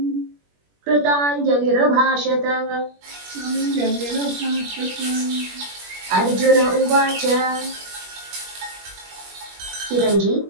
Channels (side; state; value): left; late; 21 ms